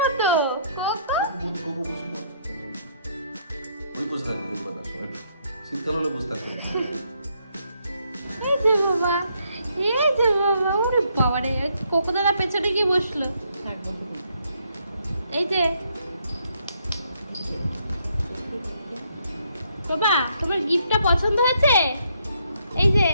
কোকো? কোকো বসে না। ওই বসে থাকবে, দেখবে না সময়। শীতকাল হলে বসে থাকবে না। এই যে বাবা, এই যে বাবা, ওরে বাবা রে, কোকো দাদা পেছনে গিয়ে বসলো। থাকবো এই যে বাবা, তোমার গিফটটা পছন্দ হয়েছে? এই যে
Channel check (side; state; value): both; inverted; correlation -0.72